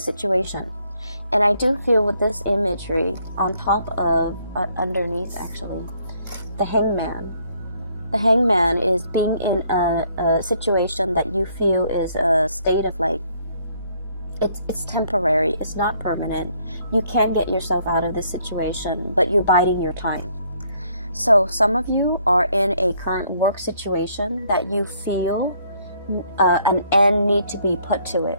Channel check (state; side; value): inverted; both; correlation -0.67